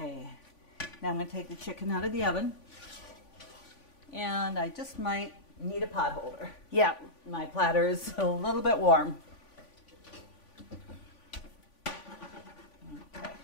Now I'm going to take the chicken out of the oven. And I just might need a pot holder. Yeah. My platter is a little bit warm. Okay.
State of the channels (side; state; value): right; late; 3.5 ms